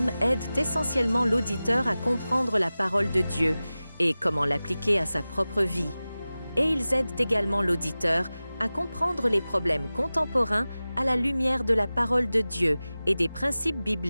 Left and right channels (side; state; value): both; inverted; correlation -0.96